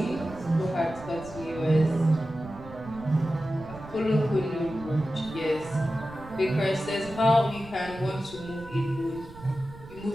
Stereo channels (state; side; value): noise; right; rumble, 17 dB below the sound